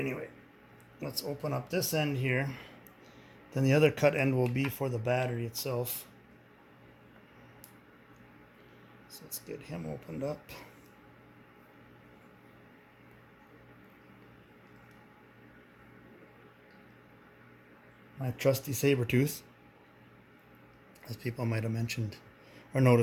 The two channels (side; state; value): both; identical; correlation 1.00